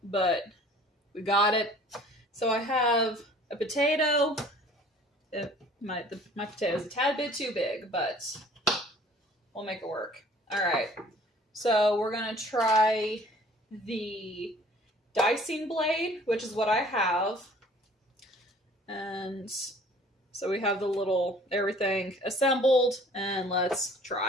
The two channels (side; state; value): both; normal; correlation 0.52